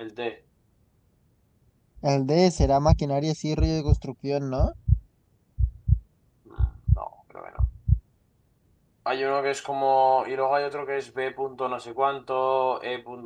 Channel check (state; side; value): identical; both; correlation 1.00